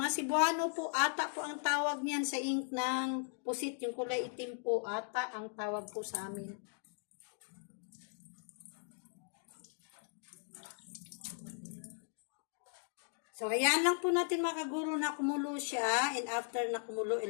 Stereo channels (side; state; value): right; silent; 52 dB below the other